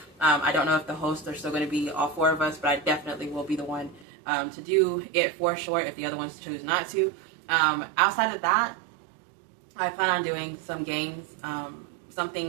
I don't know if the hosts are still going to be all 4 of us, but I definitely will be the one to do it for sure if the other ones choose not to. Outside of that, I plan on doing some games,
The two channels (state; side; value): drops out; left; at 4.0 s